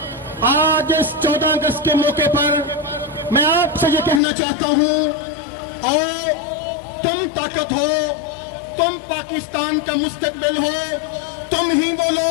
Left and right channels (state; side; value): drops out; right; at 4.2 s